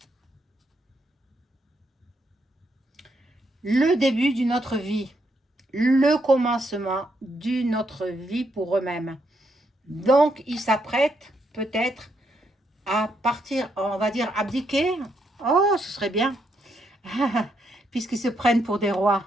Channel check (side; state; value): both; normal; correlation 0.77